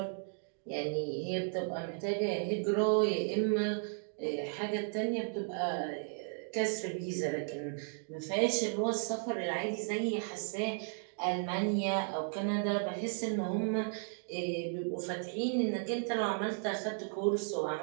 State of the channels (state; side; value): silent; left; 55 dB below the other